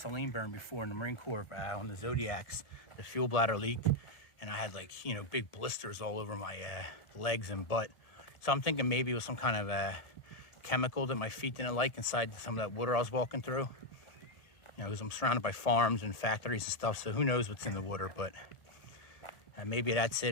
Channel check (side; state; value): right; late; 1.7 ms